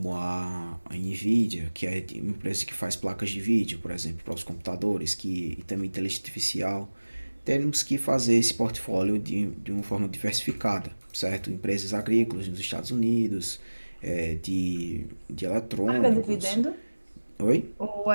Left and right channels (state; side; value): inverted; both; correlation -1.00